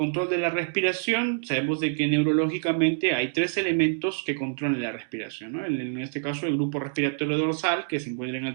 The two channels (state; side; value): silent; left; digital silence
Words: de la respiración, sabemos de que neurológicamente hay tres elementos que controlan la respiración, ¿no? En este caso, el grupo respiratorio dorsal, que se encuentra en